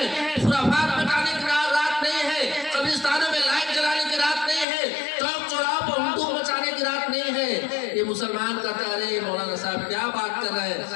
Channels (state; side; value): drops out; right; at 4.7 s